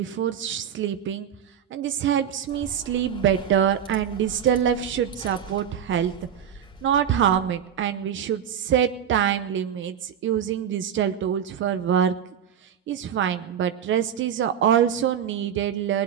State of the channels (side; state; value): left; quieter; 8.9 dB